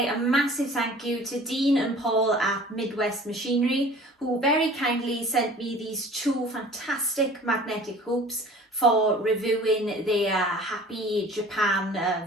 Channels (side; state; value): both; normal; correlation 0.46